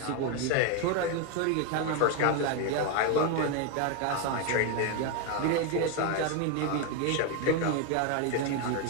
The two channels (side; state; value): both; different; correlation 0.01